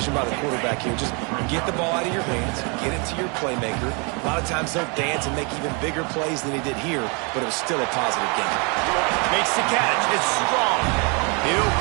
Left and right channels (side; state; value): left; quieter; 32.7 dB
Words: by the quarterback here. Just get the ball out of your hands, get it to your playmaker. A lot of times they'll dance and make even bigger plays than he did here, but it was still a positive game. Makes the catch. It's strong. He'll